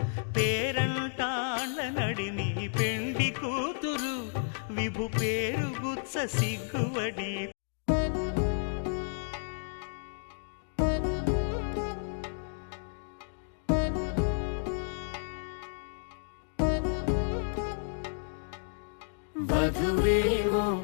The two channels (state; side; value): silent; right; digital silence